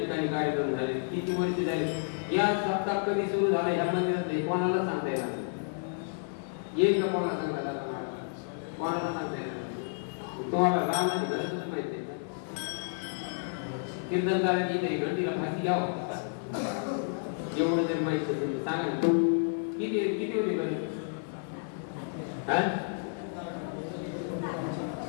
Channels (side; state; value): right; silent; digital silence